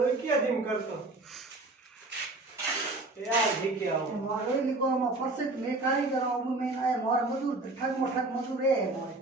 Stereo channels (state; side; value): quieter; left; 3.0 dB